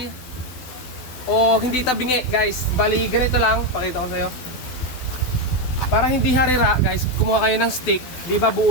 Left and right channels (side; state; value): right; late; 12 ms